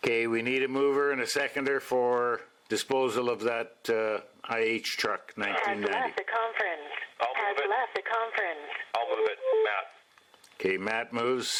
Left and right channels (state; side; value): identical; both; correlation 1.00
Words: Okay, we need a mover and a seconder for disposal of that IH truck, Has 1990. left the conference. I'll move Has it. left the conference. I'll move it, Matt. Okay, Matt moves,